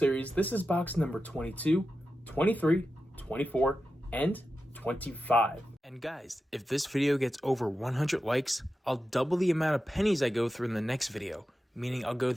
this is box number 22, 23, 24, and 25. And guys, if this video gets over 100 likes, I'll double the amount of pennies I go through in the next video, meaning I'll go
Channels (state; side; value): normal; both; correlation 0.91